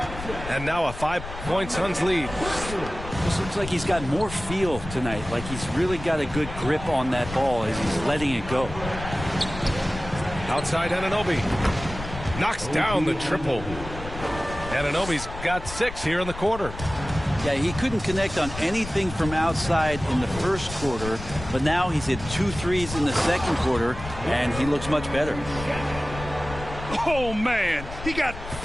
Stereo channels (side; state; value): left; noise; rumble, 10 dB below the sound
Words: And now a 5-point Suns lead. This looks like he's got more feel tonight, like he's really got a good grip on that ball as he's letting it go. Outside Anunoby. Knocks down the triple. Anunoby's got 6 here in the quarter. Yeah, he couldn't connect on anything from outside in the first quarter, but now he's hit 2 threes in the second quarter, and he looks much better. Oh, man, he got